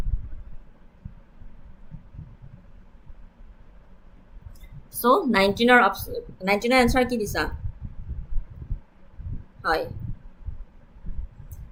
So 19ৰ answer কি দিছা? হয়,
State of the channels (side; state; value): both; identical; correlation 1.00